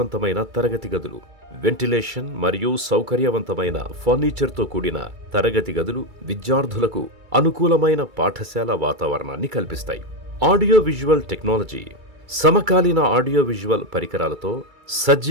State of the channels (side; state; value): left; late; 2.3 ms